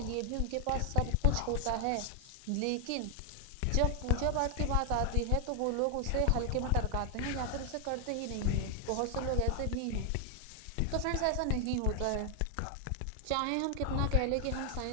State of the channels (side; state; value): both; different; correlation 0.00